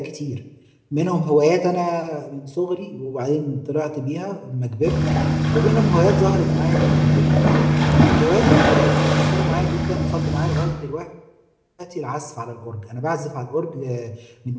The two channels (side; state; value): both; identical; correlation 1.00